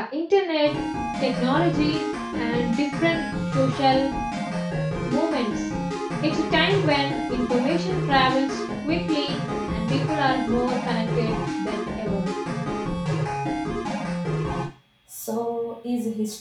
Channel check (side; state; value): both; identical; correlation 1.00